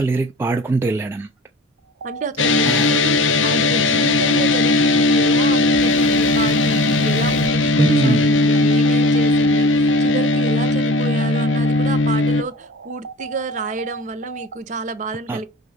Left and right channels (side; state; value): both; normal; correlation 0.40